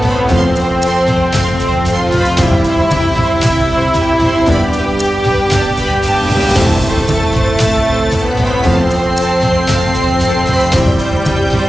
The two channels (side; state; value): both; normal; correlation 0.93